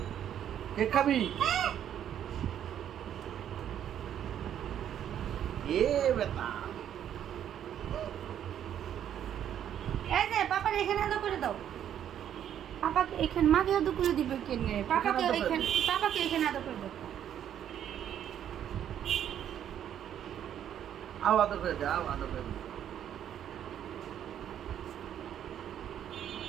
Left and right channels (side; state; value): left; quieter; 10.0 dB